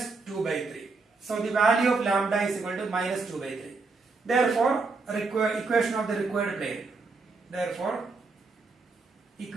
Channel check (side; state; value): left; quieter; 4.0 dB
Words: 2 by 3. So the value of lambda is equal to minus 2 by 3. Therefore equation of the required plane. Therefore